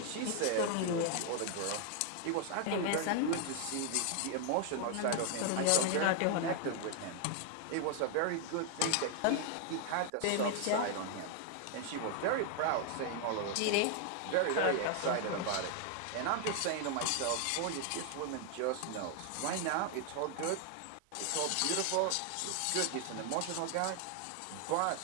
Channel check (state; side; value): different; both; correlation 0.00